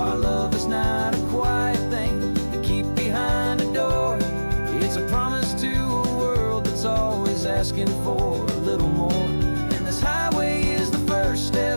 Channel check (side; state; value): both; inverted; correlation -1.00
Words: love is not a quiet thing to keep behind a door. It's a promise to a world that's always asking for a little more. And this highway is the first